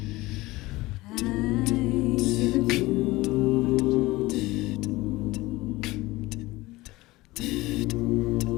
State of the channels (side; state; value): right; quieter; 19.9 dB